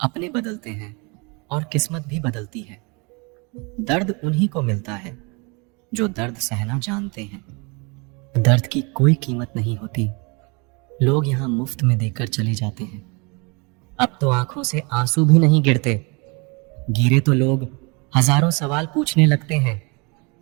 बदलते हैं और किस्मत भी बदलती है। दर्द उन्हीं को मिलता है जो दर्द सहना जानते हैं। दर्द की कोई कीमत नहीं होती, लोग यहाँ मुफ्त में देकर चले जाते हैं। अब तो आंखों से आंसू भी नहीं गिरते, गिरे तो लोग हजारों सवाल पूछने लगते हैं,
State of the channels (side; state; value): left; quieter; 30.3 dB